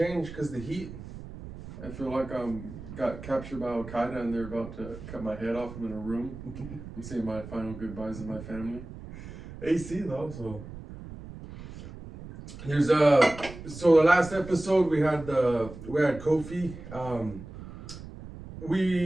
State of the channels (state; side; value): noise; right; rumble, 13 dB below the sound